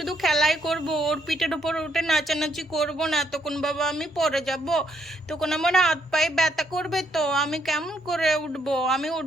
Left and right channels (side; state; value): both; normal; correlation 0.73